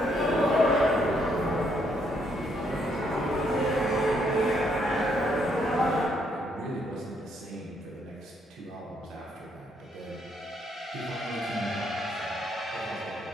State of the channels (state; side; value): normal; both; correlation 0.72